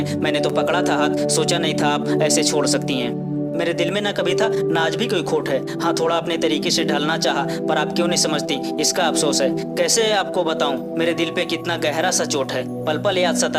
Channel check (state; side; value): identical; both; correlation 1.00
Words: मैंने तो पकड़ा था हाथ, सोचा नहीं था आप ऐसे छोड़ सकती हैं। मेरे दिल में ना कभी था ना आज भी कोई खोट है। हाँ, थोड़ा अपने तरीके से ढलना चाहा, पर आप क्यों नहीं समझती, इसका अफसोस है। कैसे आपको बताऊं मेरे दिल पे कितना गहरा सा चोट है। पल पल याद